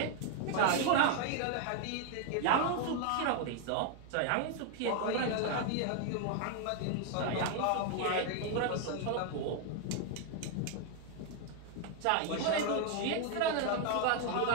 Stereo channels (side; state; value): both; different; correlation 0.00